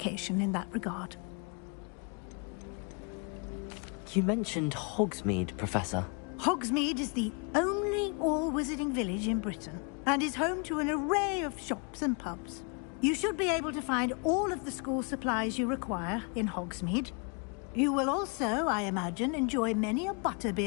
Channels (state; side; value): quieter; right; 36.2 dB